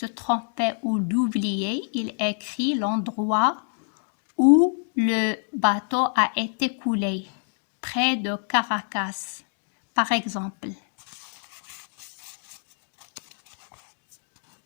tromper ou d'oublier, il écrit l'endroit où le bateau a été coulé, près de Caracas, par exemple.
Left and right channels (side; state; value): right; silent; 61 dB below the other